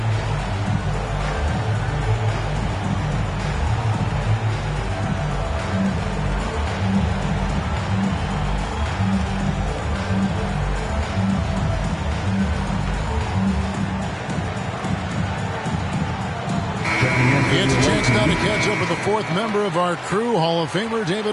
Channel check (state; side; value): identical; both; correlation 1.00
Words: It's a chance now to catch up with the fourth member of our crew, Hall of Famer